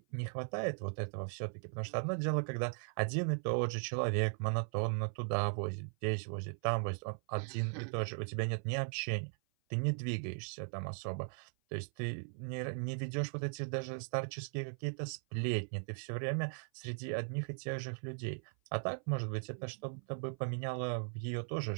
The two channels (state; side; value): silent; left; 52 dB below the other